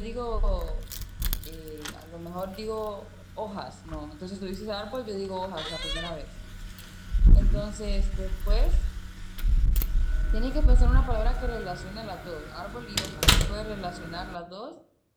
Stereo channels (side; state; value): both; identical; correlation 1.00